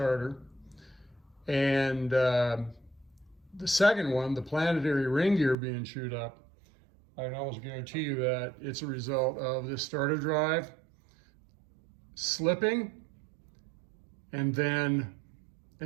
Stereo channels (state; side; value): drops out; left; at 5.6 s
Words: And the second one, the planetary ring gear being chewed up, I can almost guarantee you that it's a result of this starter drive slipping and then